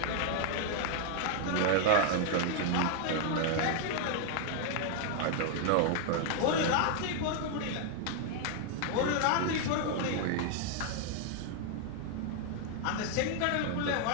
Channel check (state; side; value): different; both; correlation 0.00